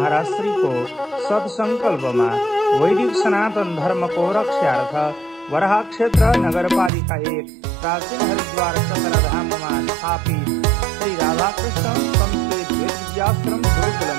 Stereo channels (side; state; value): left; drops out; at 6.9 s